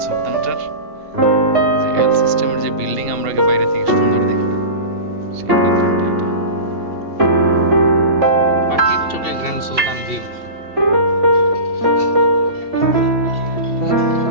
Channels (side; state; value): left; late; 2.7 ms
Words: সুলতানটার যে এল সিস্টেমের যে বিল্ডিং আমরা বাইরে থেকে সুন্দর দেখি, সেই বিল্ডিংটা এটা। পাখির চোখে গ্র্যান্ড সুলতান ভিউ।